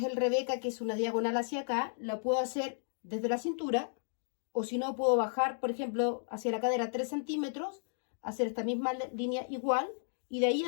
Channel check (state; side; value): silent; right; digital silence